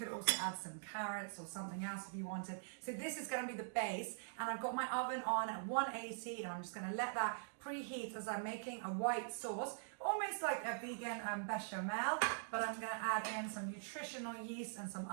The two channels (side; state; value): left; silent; digital silence